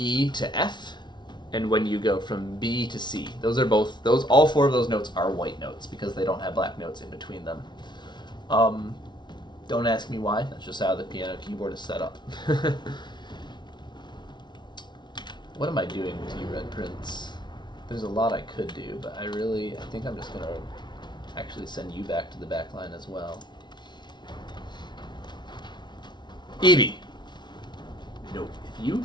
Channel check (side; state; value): right; late; 0.21 ms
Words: to F, and when you go from B to C. All 4 of those notes are white notes because they don't have black notes in between them. Don't ask me why, that's just how the piano keyboard is set up. What am I doing with you, Red Prince? There's a lot I could do, but I think I'm just gonna actually send you back to the back line as well. Evie! Nope. If you